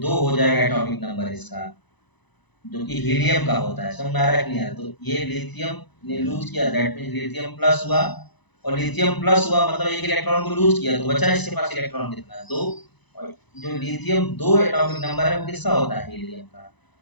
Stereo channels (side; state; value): right; late; 1.0 ms